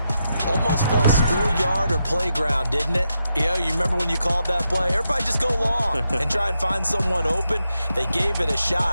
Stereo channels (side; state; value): both; inverted; correlation -0.84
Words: Almost felt schoolyard or playground, didn't it? You remember when you called that play? Everybody just go long and try and find someone open. They gave it a